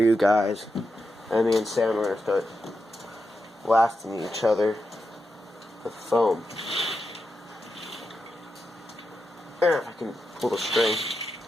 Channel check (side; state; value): both; normal; correlation 0.87